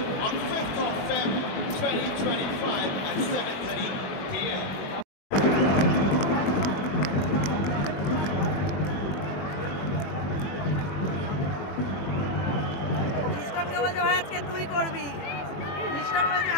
on 5th of February 2025 at 7:30 p.m. লিস্টনকে বলছে ভাই আজকে তুই করবি, লিস্টন বলছে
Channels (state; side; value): late; right; 21 ms